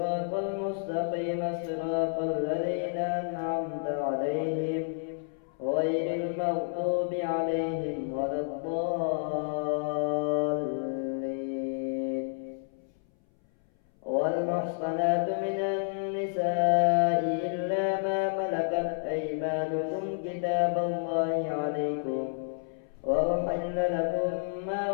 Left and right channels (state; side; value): silent; right; 58 dB below the other